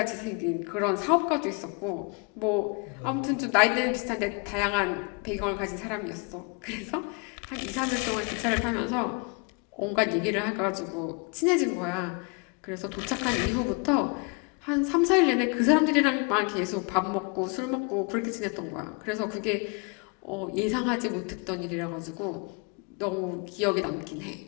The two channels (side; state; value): right; quieter; 33.9 dB